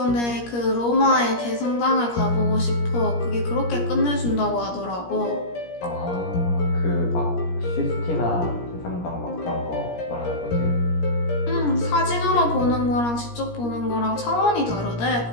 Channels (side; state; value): right; late; 17 ms